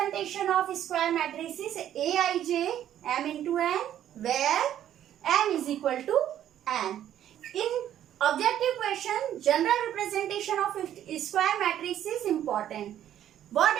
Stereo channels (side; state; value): left; quieter; 11.1 dB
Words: of square matrix is Aij m into n where m is equal to n. In objective question, general representation of square matrix is important. What